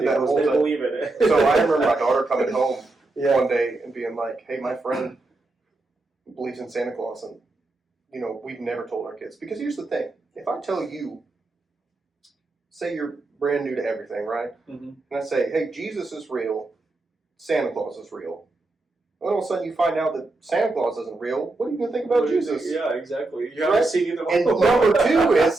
that whole they time. believe in it. So I remember my daughter coming home one day and being like, hey, my friend believes in Santa Claus. And, we've never told our kids. Because here's the thing. If I tell you, say you're brand new to everything, right? Mm-hmm. And I say, hey, Jesus is real. Santa Claus is real. And all of a sudden you find out that Santa Claus isn't real. What are you going to think about Jesus? Yeah, exactly. You haven't seen either one. And number two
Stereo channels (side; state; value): left; quieter; 3.1 dB